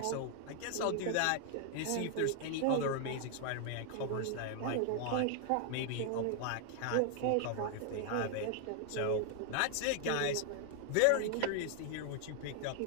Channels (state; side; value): different; both; correlation 0.00